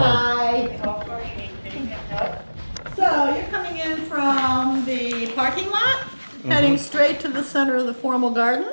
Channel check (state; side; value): inverted; both; correlation -1.00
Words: So you're coming in from the parking lot, heading straight to the center of the formal